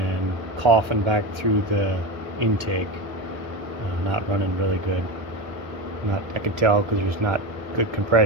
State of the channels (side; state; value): left; late; 1.3 ms